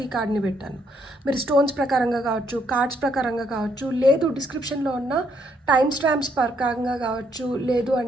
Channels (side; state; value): both; normal; correlation 0.72